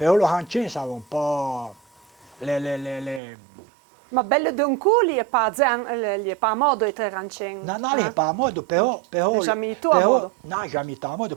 lo hancin siamo un po' le Ma bello d'un cu, gli è pas a modo di tre rancin. No, non è pas a modo, però Jamais tu a modo. No, jamais tu a modo,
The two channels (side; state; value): left; drops out; at 3.2 s